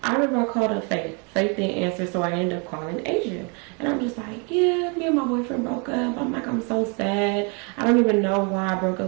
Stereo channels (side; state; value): left; quieter; 34.6 dB